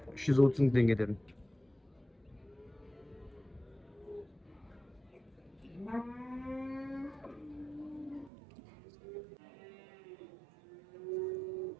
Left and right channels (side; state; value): left; drops out; at 8.3 s